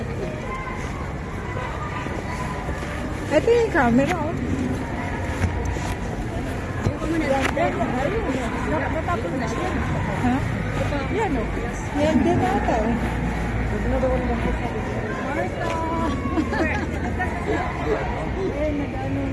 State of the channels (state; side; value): identical; both; correlation 1.00